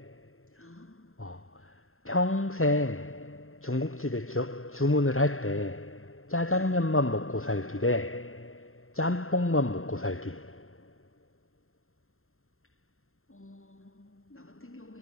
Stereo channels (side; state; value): right; late; 0.61 ms